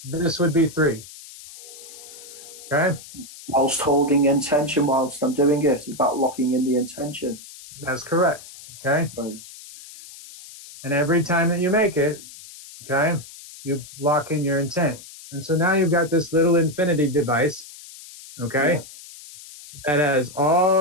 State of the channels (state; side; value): noise; left; hiss, 17 dB below the sound